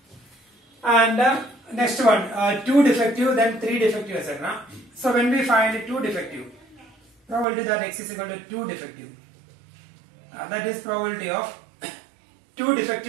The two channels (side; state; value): left; drops out; at 7.5 s